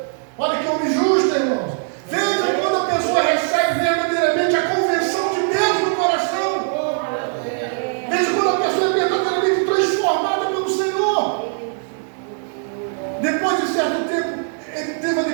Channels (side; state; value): left; silent; digital silence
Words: Olha que homem justo, irmãos. Veja quando a pessoa recebe verdadeiramente a convenção de Deus no coração. Veja quando a pessoa é verdadeiramente transformada pelo Senhor. Depois de certo tempo, ele teve a